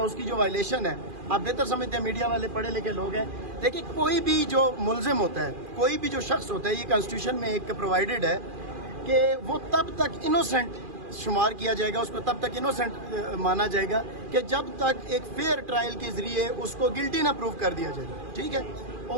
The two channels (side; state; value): left; late; 2.4 ms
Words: اس کی جو وائلیشن ہے، آپ بہتر سمجھتے ہیں، میڈیا والے پڑھے لکھے لوگ ہیں۔ دیکھیں کوئی بھی جو ملزم ہوتا ہے، کوئی بھی جو شخص ہوتا ہے، یہ کنسٹیٹیوشن میں ایک پرووائڈڈ ہے کہ وہ تب تک انوسینٹ شمار کیا جائے گا، اس کو تب تک انوسینٹ مانا جائے گا کہ جب تک ایک فیئر ٹرائل کے ذریعے اس کو گلٹی نہ پروف کر دیا جائے، ٹھیک ہے؟